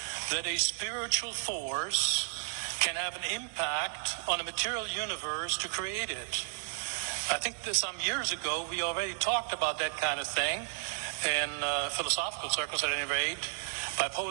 that a spiritual force can have an impact on a material universe to create it. I think that some years ago we already talked about that kind of thing in philosophical circles at any rate, by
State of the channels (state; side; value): silent; left; digital silence